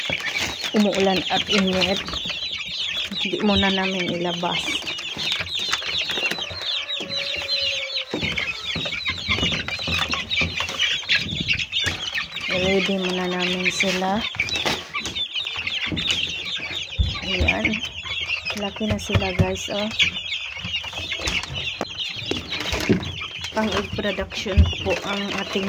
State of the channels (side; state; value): both; identical; correlation 1.00